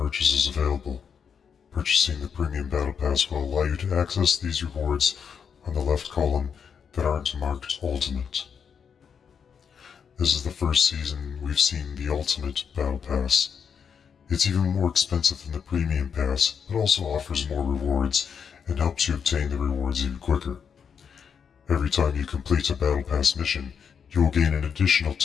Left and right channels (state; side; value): quieter; right; 7.0 dB